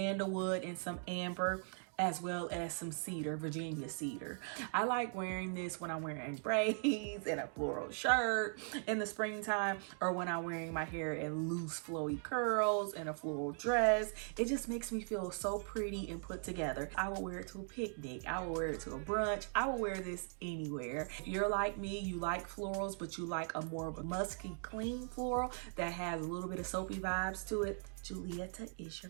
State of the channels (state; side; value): silent; left; 51 dB below the other